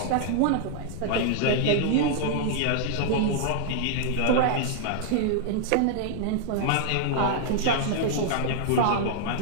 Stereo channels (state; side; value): different; both; correlation 0.00